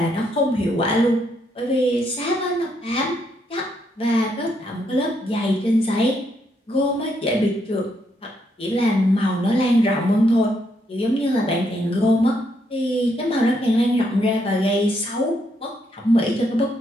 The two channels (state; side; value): normal; both; correlation 0.75